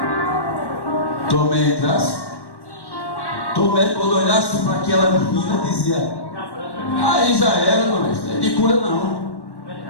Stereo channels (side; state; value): right; late; 1.1 ms